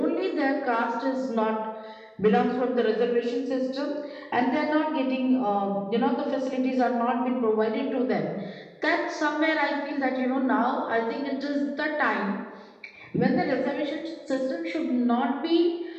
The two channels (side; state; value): both; identical; correlation 1.00